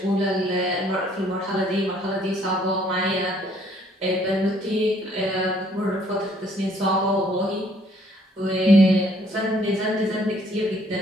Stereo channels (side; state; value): both; normal; correlation 0.63